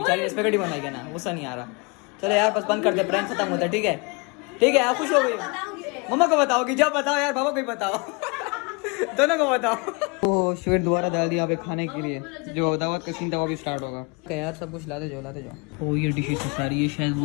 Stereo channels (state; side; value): quieter; right; 30.8 dB